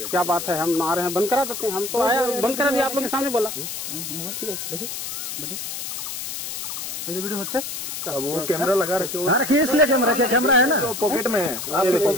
क्या बात है हम आ रहे हैं बंद करा देते हैं हम तो आया बंद करा दिया आप लोग के सामने बोला ठीक है देखिए वीडियो होच्छे वो कैमरा लगा रखे हाँ रखिए इसलिए कैमरा है ना पॉकेट में है आपके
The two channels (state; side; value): noise; left; hiss, 6 dB below the sound